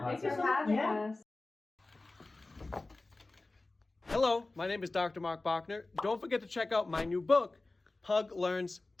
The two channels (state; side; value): quieter; right; 3.1 dB